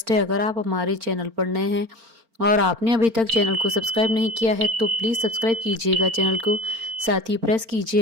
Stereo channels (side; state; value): left; late; 4.4 ms